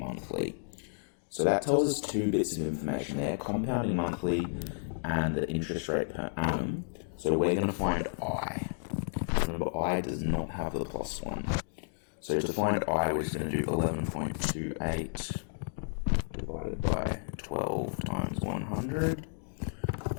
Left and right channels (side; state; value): right; silent; digital silence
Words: So that tells us 2 bits of information there, compounding monthly and the interest rate per annum. So we're going to find I. Remember, I does not have the plus 1. So to find I, we're just going to do 11.28 divided by 12 times 100.